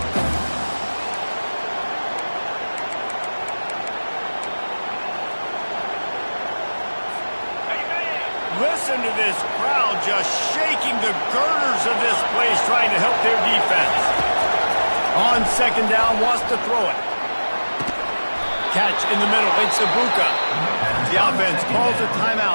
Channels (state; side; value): inverted; both; correlation -1.00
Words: Listen to this crowd just shaking the girders of this place, trying to help their defense. On 2nd down, wants to throw it. Catch in the middle, it's Ibuka. The offense calls a